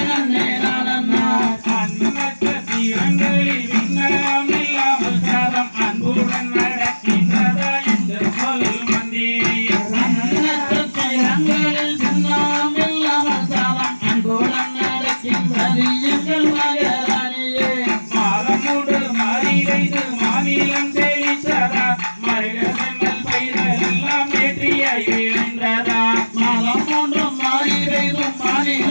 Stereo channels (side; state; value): both; inverted; correlation -1.00